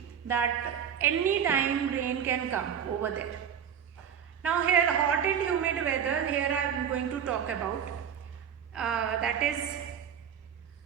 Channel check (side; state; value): left; quieter; 8.3 dB